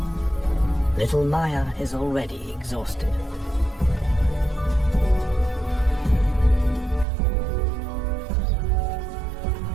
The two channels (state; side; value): drops out; left; at 7.1 s